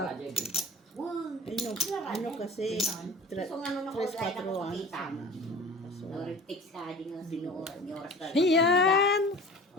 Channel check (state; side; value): normal; both; correlation 0.40